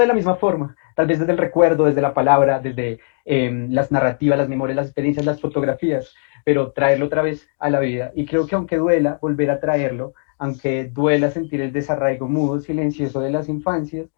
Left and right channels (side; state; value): right; silent; digital silence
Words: la misma forma, tal vez desde el recuerdo, desde la palabra, desde las narrativas, las memorias, las experiencias, las fotografías, pero traerlo otra vez a la vida. Y creo que aunque duela volver a traerlo, aunque duela sentir el desarraigo mudo, silencioso de las infancias,